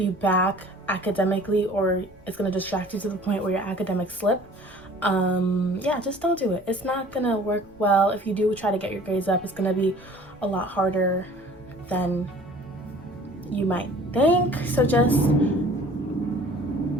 back academically, or it's going to distract you to the point where your academics slip. Yeah, just don't do it. It's not gonna work well. If you do try to get your grades up, it's gonna be a lot harder than you might think. So just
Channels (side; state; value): right; noise; rumble, 28 dB below the sound